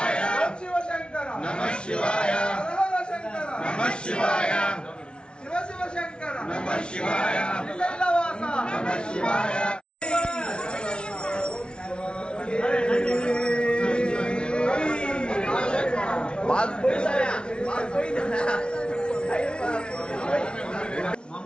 శివ శంకర హర శంకర శివ శివ శంకర శ్రీశైలవాస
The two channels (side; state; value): right; late; 0.057 ms